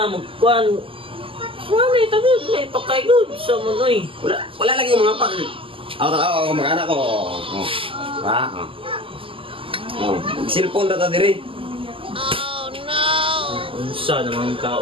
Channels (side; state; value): left; late; 0.26 ms